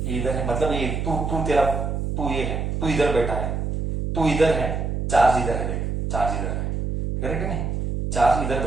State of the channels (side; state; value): right; noise; hum, 2 dB below the sound